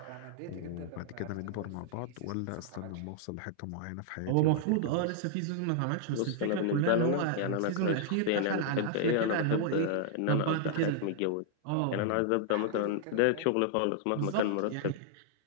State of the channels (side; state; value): both; different; correlation -0.01